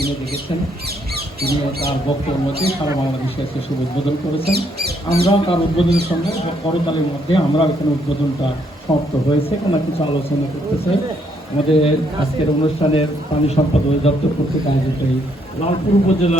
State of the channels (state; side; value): normal; both; correlation 0.72